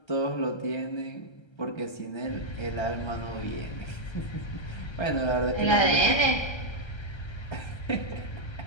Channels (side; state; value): right; late; 1.3 ms